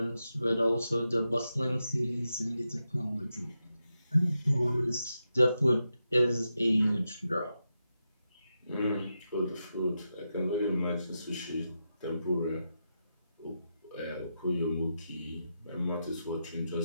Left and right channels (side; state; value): both; inverted; correlation -0.87